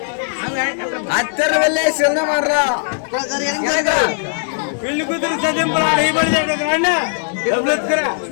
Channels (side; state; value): right; silent; digital silence